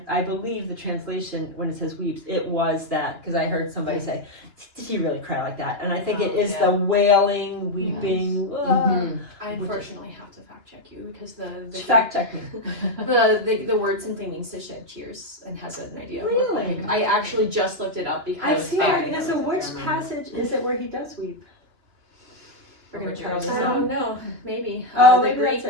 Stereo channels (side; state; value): left; late; 2.9 ms